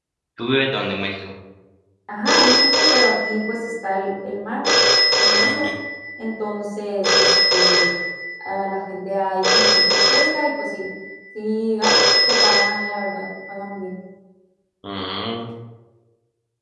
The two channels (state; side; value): identical; both; correlation 1.00